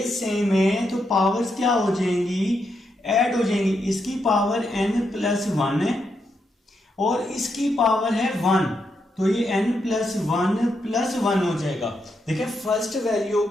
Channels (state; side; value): normal; both; correlation 0.81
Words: सेम है तो पावर्स क्या हो जाएंगी, ऐड हो जाएंगी। इसकी पावर n+1 है और इसकी पावर है 1, तो ये n+1 हो जाएगा। देखिए, फर्स्ट वैल्यू